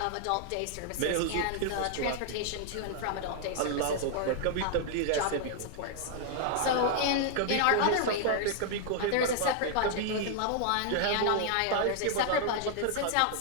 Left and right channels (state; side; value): different; both; correlation 0.00